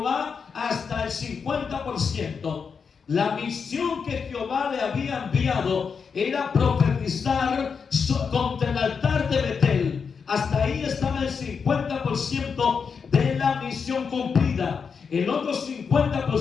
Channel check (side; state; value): right; quieter; 5.9 dB